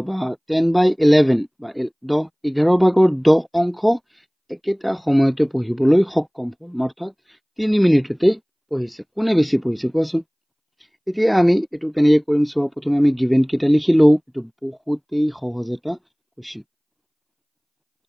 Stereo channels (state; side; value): identical; both; correlation 1.00